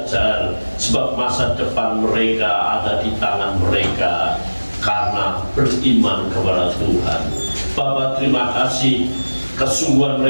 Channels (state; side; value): inverted; both; correlation -1.00